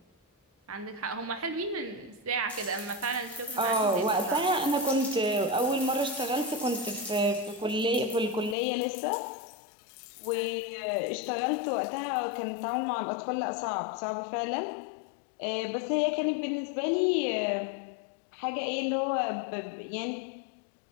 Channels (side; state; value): right; drops out; at 8.6 s